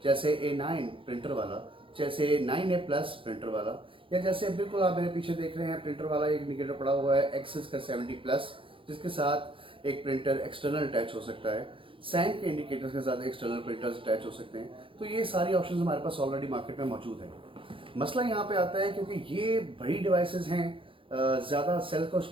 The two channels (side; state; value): left; late; 0.25 ms